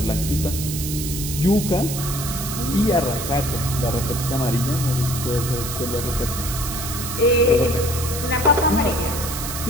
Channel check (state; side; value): noise; right; hiss, 6 dB below the sound